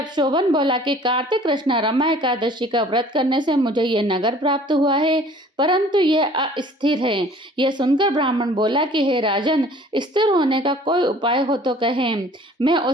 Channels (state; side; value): normal; both; correlation 0.51